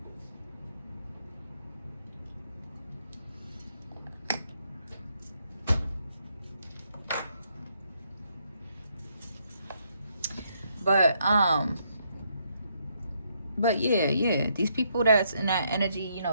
But yeah, these people that's in that energy, you know,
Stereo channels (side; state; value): both; inverted; correlation -0.74